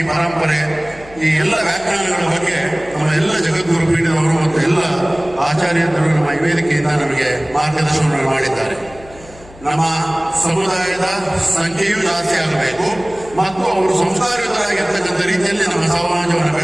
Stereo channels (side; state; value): left; noise; hum, 21 dB below the sound